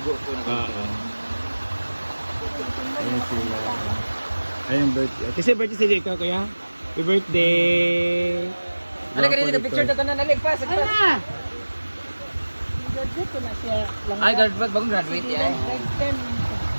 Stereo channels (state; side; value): inverted; both; correlation -1.00